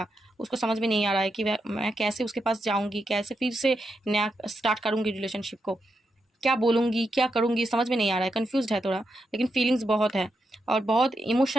उसको समझ में नहीं आ रहा है कि मैं कैसे उसके पास जाऊंगी, कैसे फिर से नया स्टार्ट करूंगी रिलेशनशिप को, क्या बोलूँगी क्या करूँगी समझ में नहीं आ रहा है, कन्फ्यूज्ड है थोड़ा, लेकिन फीलिंग्स बहुत है और बहुत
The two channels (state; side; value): normal; both; correlation 0.84